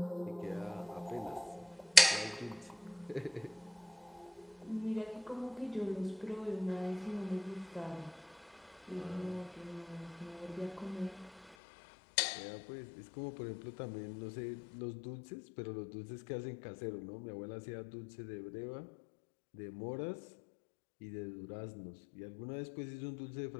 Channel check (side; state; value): right; drops out; at 11.6 s